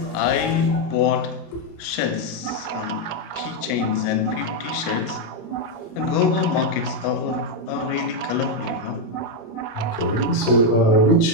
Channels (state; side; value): late; right; 29 ms